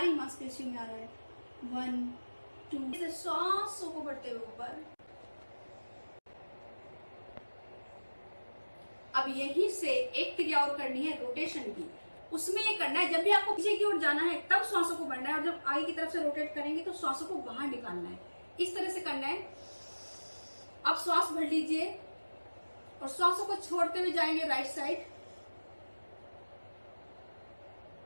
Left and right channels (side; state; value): both; inverted; correlation -1.00